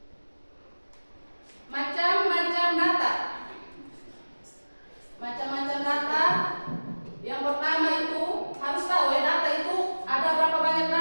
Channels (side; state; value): both; inverted; correlation -1.00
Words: Macam-macam data. Macam-macam data. Yang pertama itu harus tahu ya, data itu ada berapa banyak